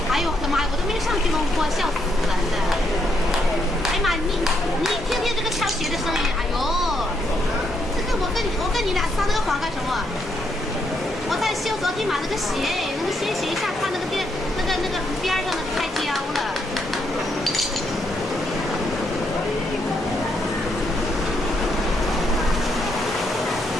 哎呦我的妈呀！我都没上去弄过，笑死人了！哎呀妈，你听听这个敲鞋的声音，哎呦，这个我跟你俩撒这个谎干什么？我在修昨天买那个鞋，那个鞋一下看那个边上的开胶了。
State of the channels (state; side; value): normal; both; correlation 0.76